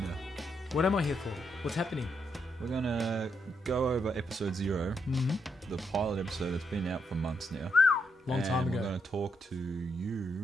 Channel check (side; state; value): both; normal; correlation 0.79